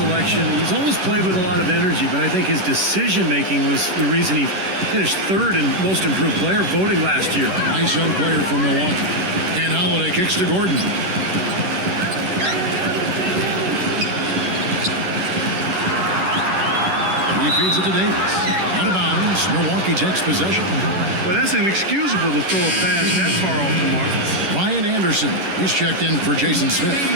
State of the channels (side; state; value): left; late; 11 ms